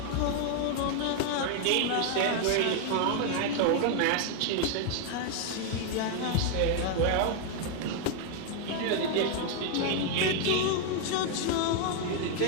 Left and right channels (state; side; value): different; both; correlation 0.00